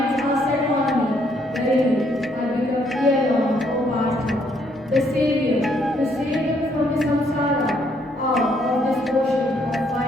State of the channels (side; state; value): both; normal; correlation 0.69